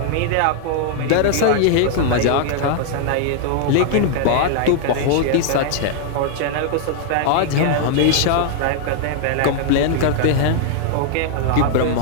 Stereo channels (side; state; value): both; different; correlation 0.00